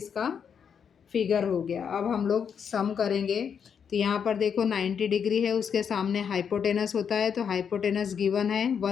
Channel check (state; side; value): quieter; right; 7.3 dB